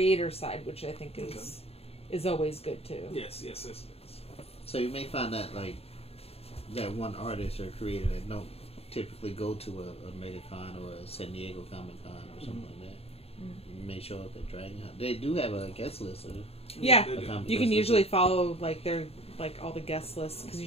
side, which I think is always good too. Yes. So you may find that like that one artist or creator that don't typically go to a MegaCon or a San Diego Comic Con or something like that. You may show up at Dragon Hunt. They do have a guest list. Yeah, you can usually follow like their all the guest lists because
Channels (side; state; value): right; late; 0.29 ms